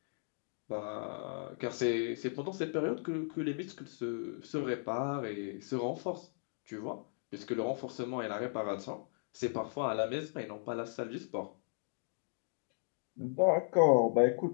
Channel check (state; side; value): silent; right; digital silence